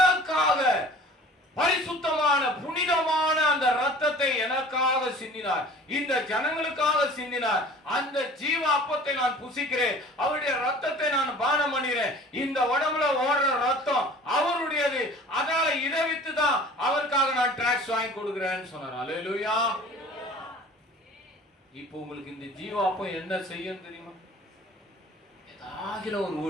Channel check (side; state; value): both; normal; correlation 0.45